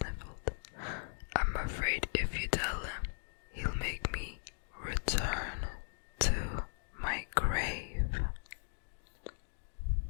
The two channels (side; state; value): right; silent; digital silence